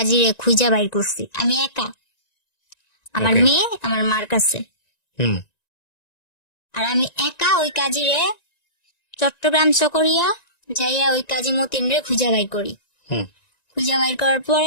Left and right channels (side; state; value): right; late; 1.9 ms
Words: খুঁজা বাইর করছি আমি একা, আমার Okay. মেয়ে আমার মার কাছে। হুম। আর আমি একা ওই কাজিরে চট্টগ্রাম চকরিয়া যাইয়া ওই কাজী মতিন রে খুঁজা বাইর করি। হুম। খুঁজা বাইর করার